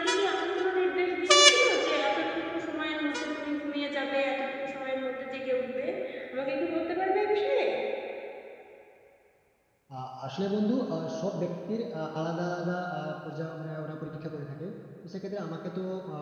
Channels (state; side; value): identical; both; correlation 1.00